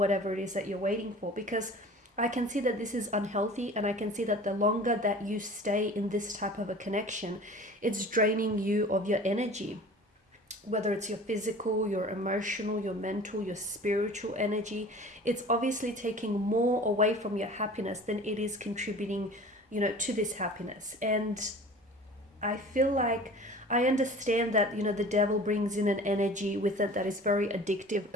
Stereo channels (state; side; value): normal; both; correlation 0.42